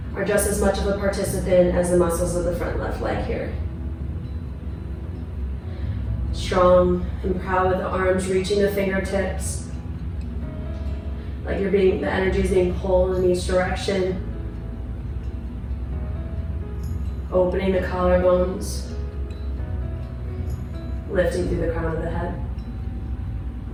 are just as much of a participant as the muscles of the front left leg here. Strong and proud with the arms reaching the fingertips. Like the energy is being pulled in each direction. Opening the collarbones. Lifting through the crown of the head.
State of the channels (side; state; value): both; identical; correlation 1.00